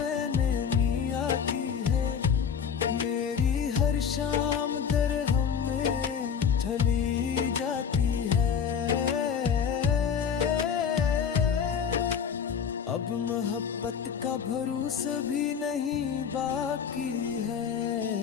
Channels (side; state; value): right; quieter; 7.2 dB